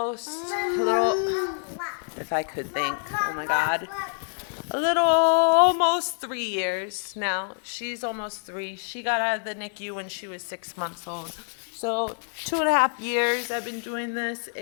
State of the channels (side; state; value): right; silent; 60 dB below the other